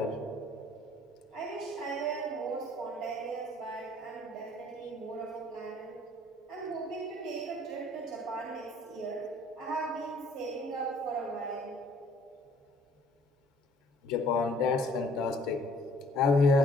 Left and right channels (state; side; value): normal; both; correlation 0.58